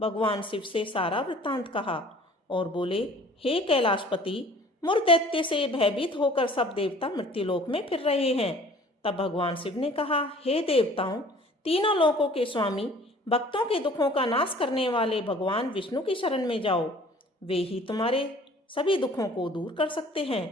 भगवान शिव से सारा वृत्तांत कहा और बोले, हे कैलाशपति, मुर दैत्य से भयभीत होकर सब देवता मृत्युलोक में फिर रहे हैं। तब भगवान शिव ने कहा, हे देवताओं, तीनों लोकों के स्वामी, भक्तों के दुखों का नाश करने वाले भगवान विष्णु की शरण में जाओ। वे ही तुम्हारे सभी दुखों को दूर कर सकते हैं।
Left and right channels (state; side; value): normal; both; correlation 0.50